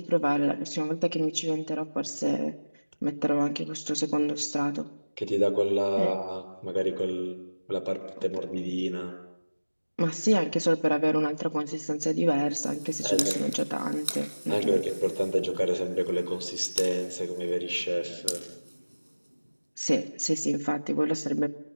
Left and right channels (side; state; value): both; inverted; correlation -1.00